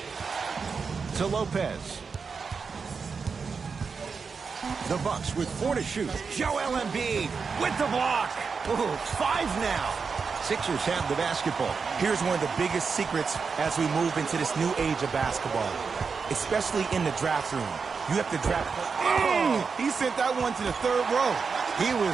To Lopez. The Bucks with 4 to shoot. Joel Embiid with the block. Ooh, 5 now. Sixers have the basketball. Here's one of the biggest secrets as we move into this new age of basketball, especially in the draft room. You have to draft. Oh, he sent that one to the 3rd row. He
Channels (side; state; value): left; quieter; 5.3 dB